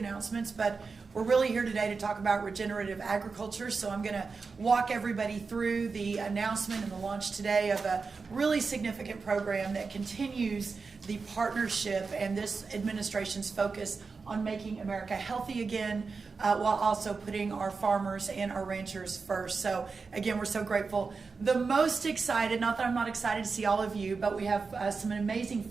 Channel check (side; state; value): left; quieter; 4.7 dB